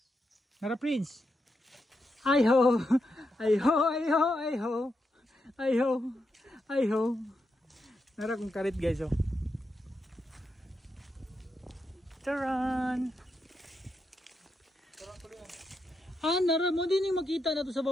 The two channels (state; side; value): normal; both; correlation 0.84